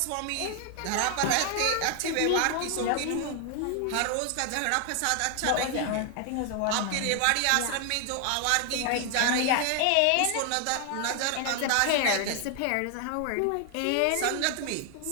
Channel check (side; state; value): both; different; correlation 0.00